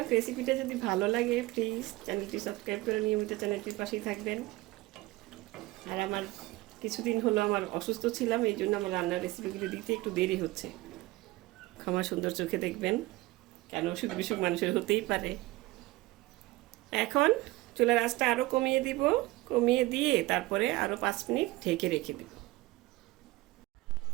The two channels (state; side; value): quieter; left; 19.8 dB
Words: রেসিপিটা যদি ভালো লাগে প্লিজ চ্যানেলটি সাবস্ক্রাইব করে নিয়মিত চ্যানেলটির পাশেই থাকবেন। আর আমার কিছুদিন হলো আমার অসুস্থ ছিলাম, এই জন্য আমার রান্নার রেসিপিগুলো দিতে একটু দেরি হচ্ছে, ক্ষমা সুন্দর চোখে দেখবেন, কেন অসুখ বিসুখ মানুষের হতেই পারে। এখন চুলার আঁচটা আরও কমিয়ে দিব, কমিয়ে দিয়ে তারপরে আরও 5 মিনিট ঢেকে রেখে দেব।